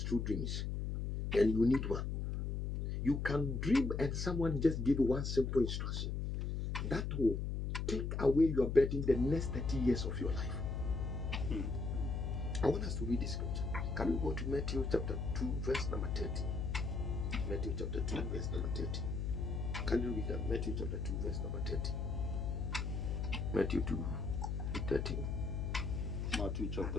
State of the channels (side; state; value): left; noise; hum, 2 dB below the sound